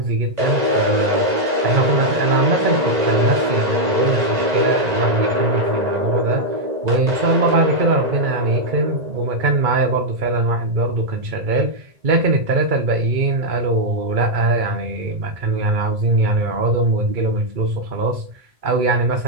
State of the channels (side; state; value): left; late; 1.9 ms